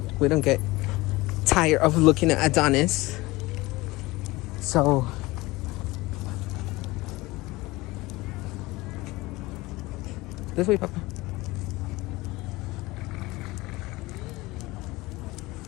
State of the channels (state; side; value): quieter; right; 20.9 dB